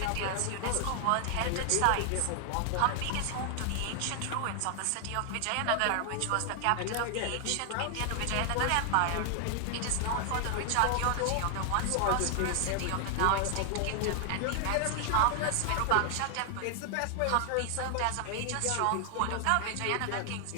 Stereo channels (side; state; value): both; different; correlation 0.00